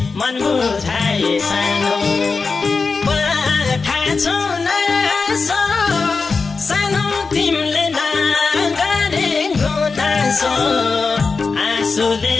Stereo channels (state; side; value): quieter; right; 4.5 dB